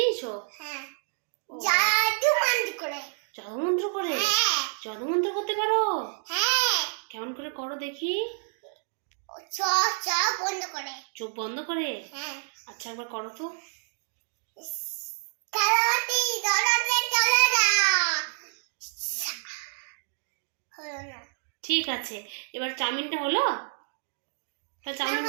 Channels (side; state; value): left; silent; digital silence